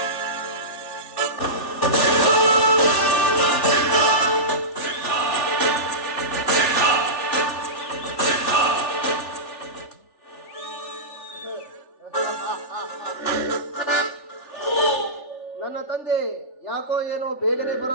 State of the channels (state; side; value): late; right; 3.4 ms